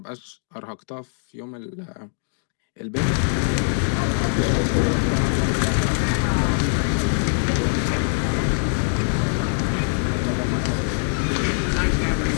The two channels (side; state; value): right; silent; digital silence